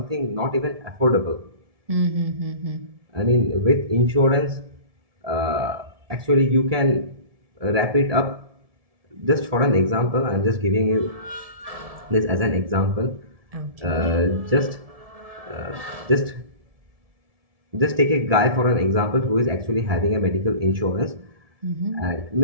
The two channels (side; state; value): left; late; 1.7 ms